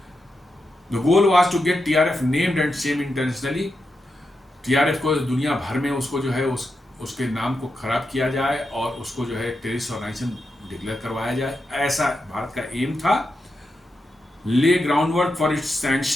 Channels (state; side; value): normal; both; correlation 0.87